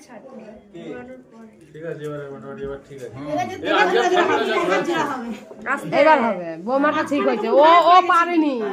ছাড়তে হবে, ঘোরানোর পরে। ঠিক আছে, এবারে মোটামুটি এবার ঠিক আছে। এবার হবে। বৌমাটা ঠিক হয়েছে, ও পারেনি।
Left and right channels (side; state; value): both; identical; correlation 1.00